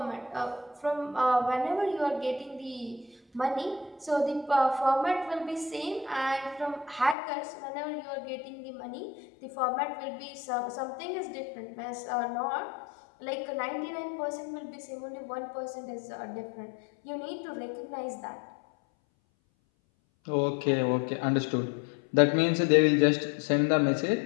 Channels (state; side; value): drops out; right; at 7.2 s